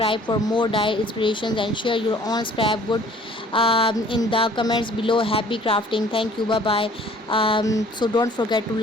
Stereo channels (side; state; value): both; normal; correlation 0.54